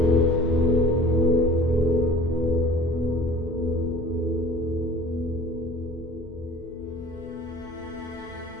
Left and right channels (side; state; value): both; normal; correlation 0.46